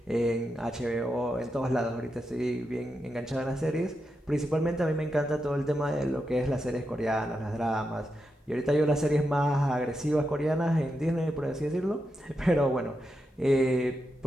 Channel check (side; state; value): both; normal; correlation 0.86